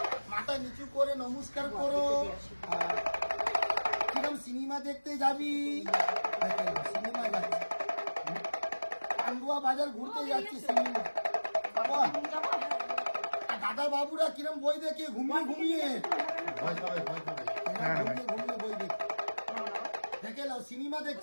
মাথা নিচু করে নমস্কার করো। কিরম সিনেমা দেখতে যাবি, সিনেমা যাচ্ছি, পান্ডুয়া বাজার ঘুরতে যাচ্ছি, সিনেমা। দাদা বাবুরা কিরম বই দেখে ঘুমিয়ে ঘুমিয়ে ঘুমিয়ে বই দেখে, দেখে নাও সিনেমা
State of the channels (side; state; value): both; inverted; correlation -1.00